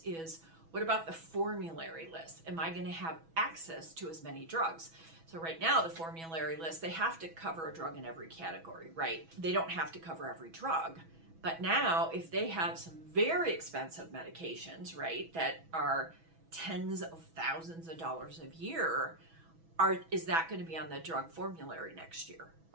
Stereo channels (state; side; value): late; left; 6.1 ms